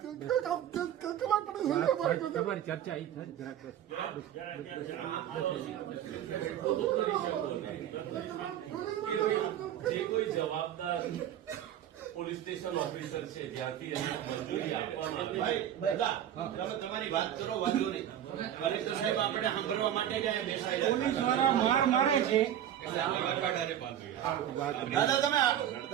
કલાક તમારી ચર્ચા અહીં જે કોઈ જવાબદાર પોલીસ સ્ટેશન ઓફિસર છે જ્યાંથી એને મંજૂરી આપવામાં તમારી વાત કરો, વાંધો નહીં. કલેક્ટર સાહેબ આપણે સાંભળવા માટે જ અહીંયા બેસાયેલા. પોલીસ વાળા માર મારે છે. દાદા તમે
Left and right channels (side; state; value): left; quieter; 10.7 dB